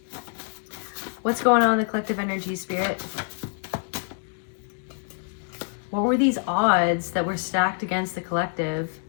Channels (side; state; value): right; silent; 61 dB below the other